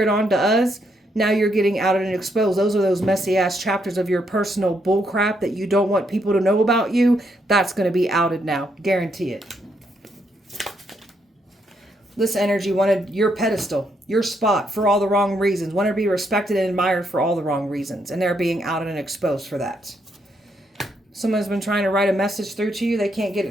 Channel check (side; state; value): both; normal; correlation 0.76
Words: onto us. Now you're getting outed and exposed. Those are those messy ass chapters of your personal bullcrap that you don't want people to know about you. That's going to be outed now. Guarantee it. This energy wanted your pedestal, your spot, for all the wrong reasons. Wanted to be respected and admired for all the wrong reasons. And they're being outed and exposed for that. Someone's been trying to write a message through to you. They can't get